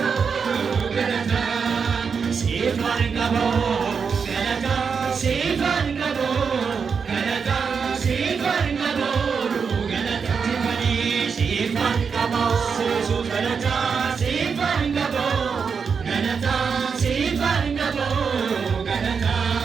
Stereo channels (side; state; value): left; quieter; 5.9 dB